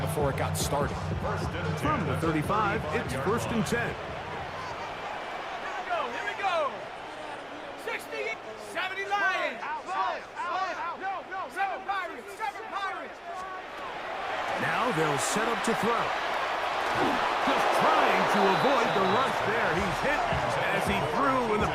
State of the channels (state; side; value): identical; both; correlation 1.00